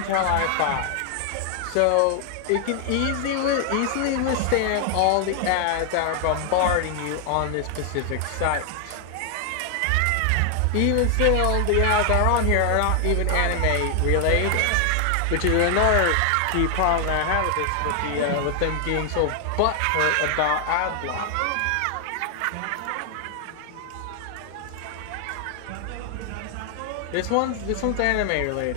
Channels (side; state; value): both; different; correlation 0.00